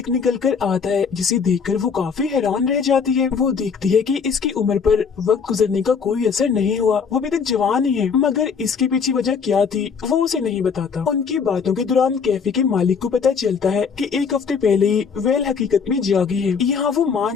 निकल कर आता है, जिसे देखकर वो काफी हैरान रह जाती है। वो देखती है कि इसकी उम्र पर वक्त गुजरने का कोई असर नहीं हुआ, वो अभी तक जवान ही है, मगर इसके पीछे वजह क्या थी वो उसे नहीं बताता। उनकी बातों के दौरान कैफे के मालिक को पता चलता है कि एक हफ्ते पहले ही वेल हकीकत में जागी है। यहाँ वो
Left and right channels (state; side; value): quieter; right; 6.0 dB